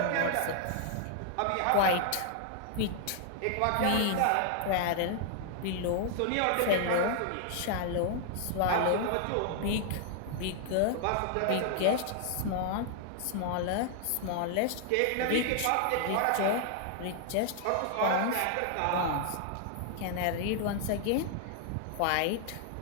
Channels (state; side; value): different; both; correlation 0.00